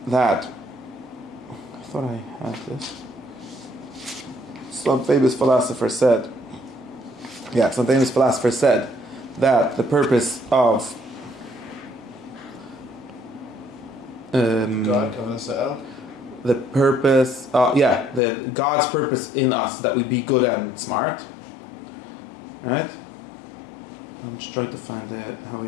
that. I thought I had this. Some famous philosopher said that the purpose of God's purpose in us, that we be good and smart, right? I'm just trying to find how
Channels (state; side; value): drops out; right; at 18.2 s